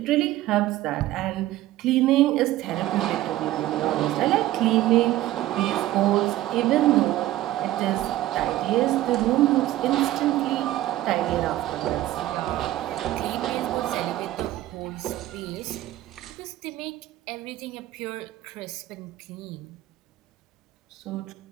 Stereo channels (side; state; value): left; quieter; 15.1 dB